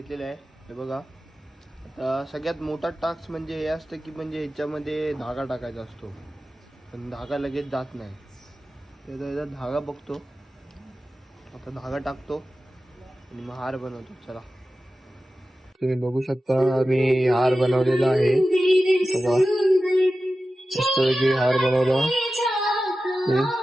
आहे. हे बघा, आता सगळ्यात मोठा टास्क म्हणजे हे असतं की म्हणजे ह्याच्यामध्ये धागा टाकायचा असतो, पण धागा लगेच जात नाही. त्याचा धागा बघतो, आता धागा टाकतो आणि मग हार बनवतो. चला, तुम्ही बघू शकता मी हार बनवलेला आहे. बघा मस्तपैकी हार बनवला.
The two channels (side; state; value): both; normal; correlation 0.94